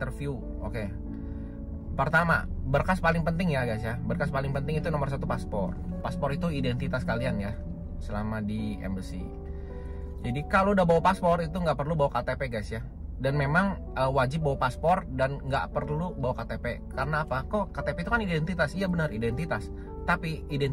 Oke, pertama, berkas paling penting ya guys ya, berkas paling penting itu nomor 1 paspor. Paspor itu identitas kalian ya selama di Embassy. Jadi kalau udah bawa paspor itu nggak perlu bawa KTP guys ya. Dan memang wajib bawa paspor dan nggak perlu bawa KTP. Karena apa? Kok KTP itu kan identitas? Iya benar, identitas. Tapi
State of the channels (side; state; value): both; identical; correlation 1.00